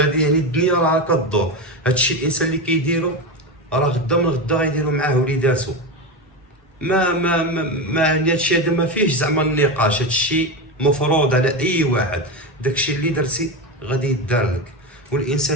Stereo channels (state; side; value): normal; both; correlation 0.17